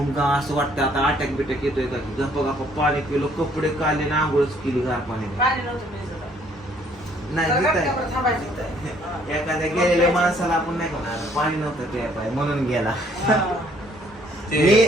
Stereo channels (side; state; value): both; normal; correlation 0.63